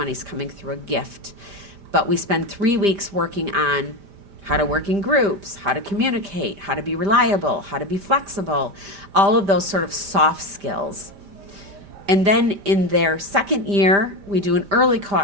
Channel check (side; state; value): left; late; 5.0 ms